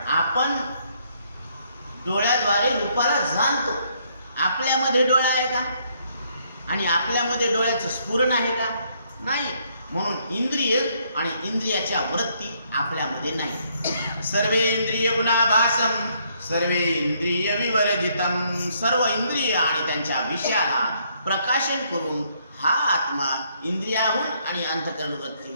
आपण डोळ्याद्वारे रूपाला जाणतो. आपल्यामध्ये डोळा आहे का? आणि आपल्यामध्ये डोळ्याचं स्फुरण आहे का? नाही. म्हणून इंद्रिय आणि इंद्रियाच्या वृत्ती आपल्यामध्ये नाही. सर्वे इंद्रिय गुणाभासम सर्वे इंद्रिय विवर्जितम. सर्व इंद्रिय आणि त्यांच्या विषयाला प्रकाशन करून हा आत्मा इंद्रियाहून आणि अंतःकरण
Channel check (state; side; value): inverted; both; correlation -0.70